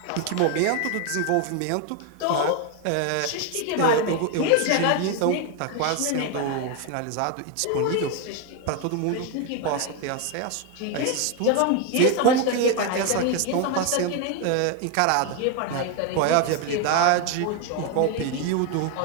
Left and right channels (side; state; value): both; different; correlation 0.01